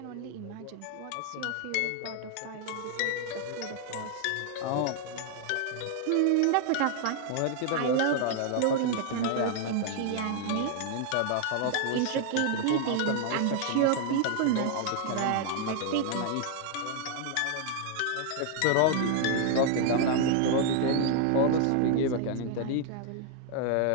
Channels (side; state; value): both; different; correlation 0.00